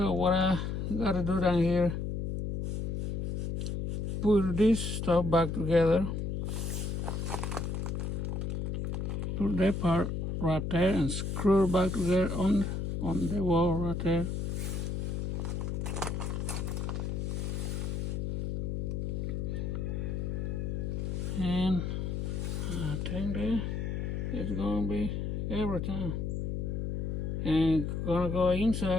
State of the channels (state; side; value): noise; left; hum, 1 dB below the sound